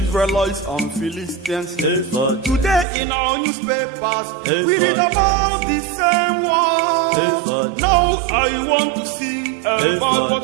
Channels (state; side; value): drops out; left; at 2.9 s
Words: and Philistines. Today in our newspapers we read about the same war. Now I want to sing about